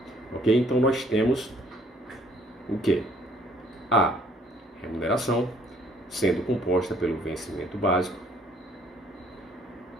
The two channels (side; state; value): both; normal; correlation 0.62